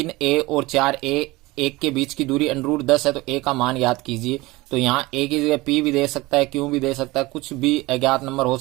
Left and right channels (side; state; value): left; quieter; 21.1 dB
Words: और 4a 1 के बीच की दूरी √10 है तो a का मान याद कीजिए। तो यहाँ a की जगह p भी दे सकता है, q भी दे सकता है, कुछ भी अज्ञात नंबर हो